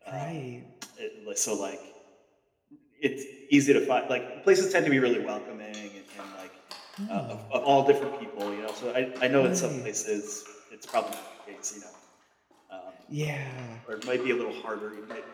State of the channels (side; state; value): both; identical; correlation 1.00